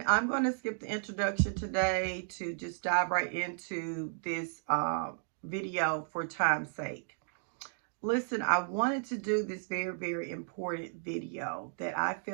I'm going to skip the introduction today to just dive right into this video for time's sake. Listen, I wanted to do this very, very important video that I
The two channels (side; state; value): left; silent; digital silence